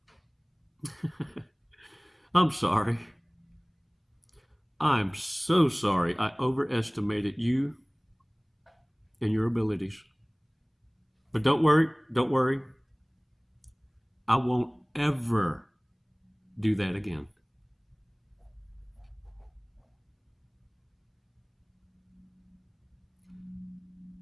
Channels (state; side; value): identical; both; correlation 1.00